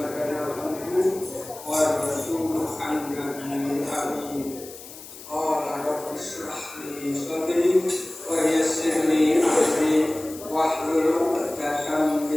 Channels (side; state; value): left; noise; hiss, 16 dB below the sound